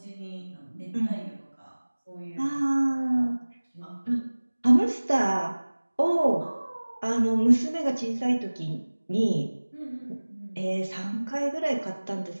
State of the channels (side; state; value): both; inverted; correlation -1.00